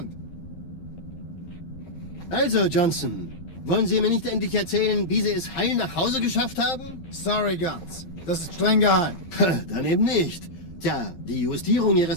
Also Johnson, wollen Sie mir nicht endlich erzählen, wie Sie es heil nach Hause geschafft haben? Sorry, Guns. Das ist streng geheim. Dann eben nicht. Tja, die Justierung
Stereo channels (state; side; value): late; right; 11 ms